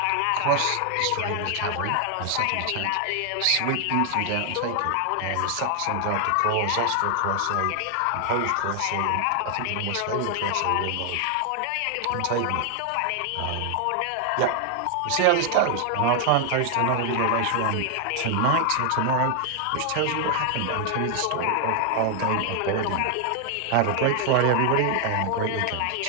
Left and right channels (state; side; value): different; both; correlation 0.00